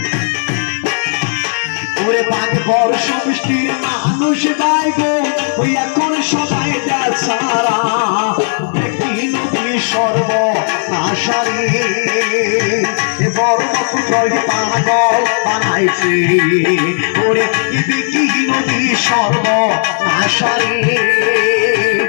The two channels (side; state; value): right; silent; digital silence